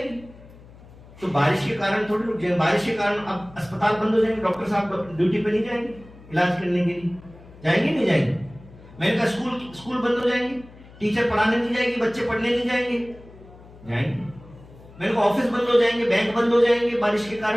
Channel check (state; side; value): noise; left; hum, 21 dB below the sound